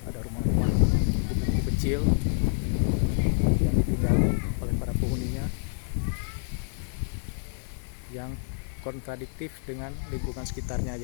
ada rumah-rumah gubuk kecil yang ditinggali oleh para penghuninya, yang kontradiktif dengan lingkungan sekitarnya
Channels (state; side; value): silent; right; 59 dB below the other